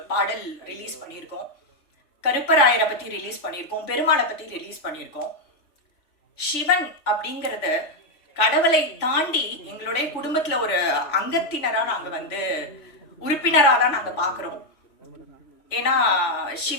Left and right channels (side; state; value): right; late; 3.4 ms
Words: பாடல் ரிலீஸ் பண்ணியிருக்கோம். கருப்பராயரை பத்தி ரிலீஸ் பண்ணியிருக்கோம். பெருமாளை பத்தி ரிலீஸ் பண்ணியிருக்கோம். சிவன் அப்படிங்கறது கடவுளை தாண்டி எங்களுடைய குடும்பத்துல ஒரு அங்கத்தினரா நாங்க வந்து உறுப்பினரா தான் நாங்க பாக்குறோம். ஏன்னா